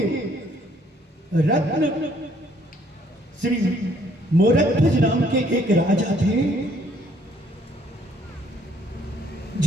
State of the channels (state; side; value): normal; both; correlation 0.64